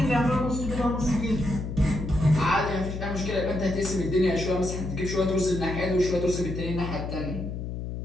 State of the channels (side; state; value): left; noise; hum, 6 dB below the sound